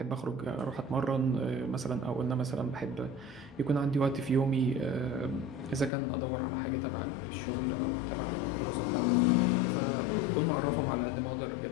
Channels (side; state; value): right; drops out; at 5.9 s